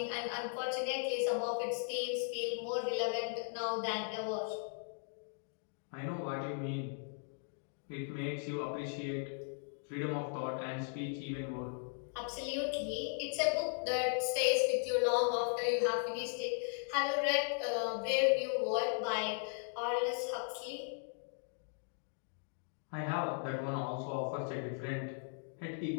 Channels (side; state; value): right; silent; 53 dB below the other